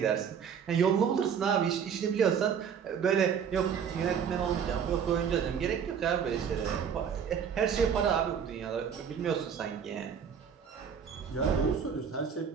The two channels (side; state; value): left; quieter; 7.4 dB